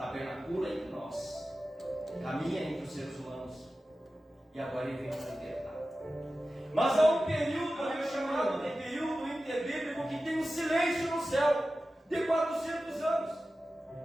entre nós, caminha entre os seres humanos, e agora Ele vem para libertar. Mas há um período, chamado de período interbíblico, que tem um silêncio no céu, de 400 anos.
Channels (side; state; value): both; normal; correlation 0.94